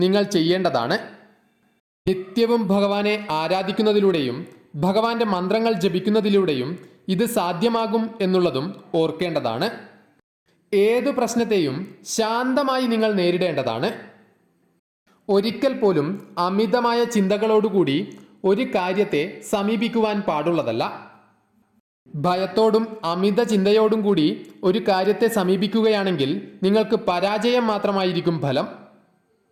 നിങ്ങൾ ചെയ്യേണ്ടതാണ്. നിത്യവും ഭഗവാനെ ആരാധിക്കുന്നതിലൂടെയും ഭഗവാന്റെ മന്ത്രങ്ങൾ ജപിക്കുന്നതിലൂടെയും ഇത് സാധ്യമാകും എന്നുള്ളതും ഓർക്കേണ്ടതാണ്. ഏതു പ്രശ്നത്തെയും ശാന്തമായി നിങ്ങൾ നേരിടേണ്ടതാണ്. ഒരിക്കൽ പോലും അമിതമായ ചിന്തകളോടുകൂടി ഒരു കാര്യത്തെ സമീപിക്കുവാൻ പാടുള്ളതല്ല. ഭയത്തോടും അമിത ചിന്തയോടും കൂടി ഒരു കാര്യത്തെ സമീപിക്കുകയാണെങ്കിൽ നിങ്ങൾക്ക് പരാജയം മാത്രമായിരിക്കും ഫലം.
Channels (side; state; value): both; identical; correlation 1.00